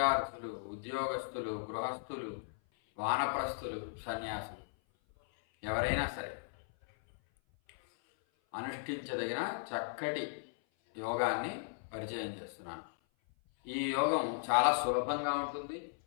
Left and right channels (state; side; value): silent; right; 53 dB below the other